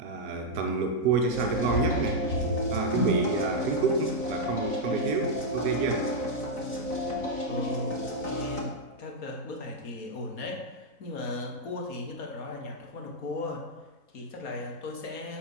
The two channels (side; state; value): right; late; 3.9 ms